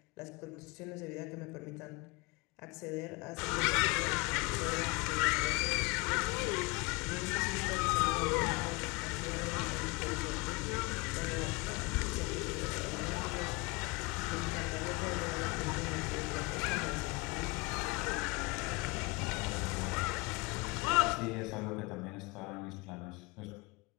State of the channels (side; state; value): right; quieter; 25.9 dB